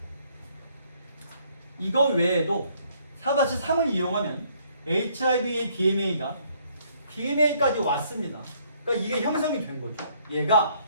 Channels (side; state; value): both; inverted; correlation -0.66